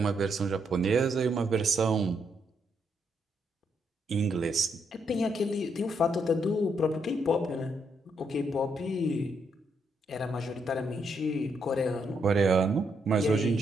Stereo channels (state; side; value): normal; both; correlation 0.77